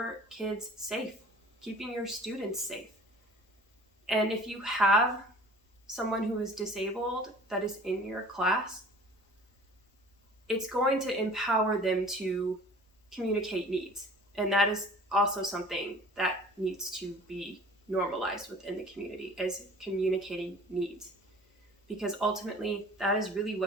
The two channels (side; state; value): both; normal; correlation 0.46